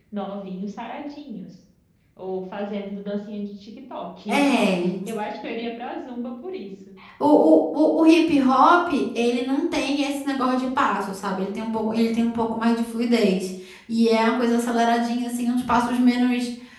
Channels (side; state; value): both; identical; correlation 1.00